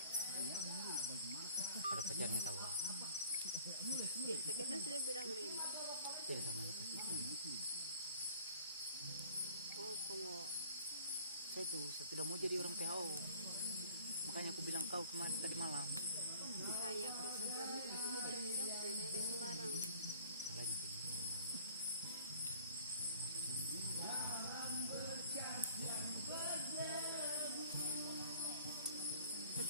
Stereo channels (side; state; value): both; inverted; correlation -0.51